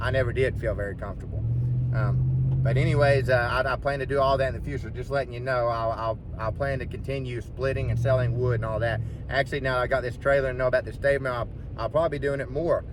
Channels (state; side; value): identical; both; correlation 1.00